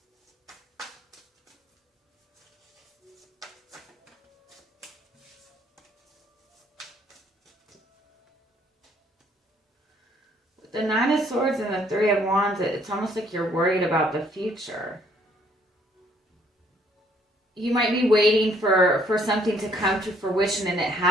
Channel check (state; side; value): normal; both; correlation 0.64